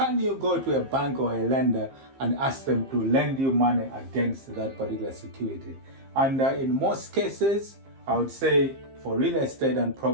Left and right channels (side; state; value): left; late; 15 ms